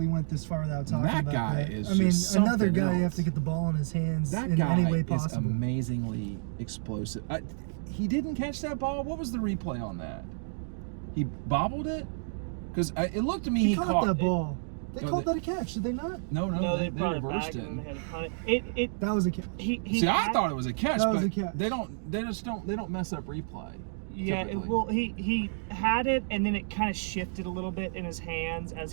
went this far without talking That about guy that. is another something guy you have else. to get the ball in his hands That in guy any way is possible. amazingly explosive. He didn't catch that ball. What was the replay on that? He bobbled it? Because it looked to me he caught that ball. They No, called they- that a catch, did they not? No, they brought it reversed back it. and they had to punt it. That was a catch. See, I thought it was a catch, That was but a catch. they don't mess up replay. Yeah, typically. he had it, and then it kind of shifted a little bit in his hands as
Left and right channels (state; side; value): silent; left; digital silence